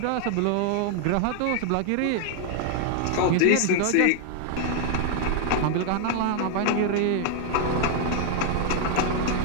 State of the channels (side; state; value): both; different; correlation 0.00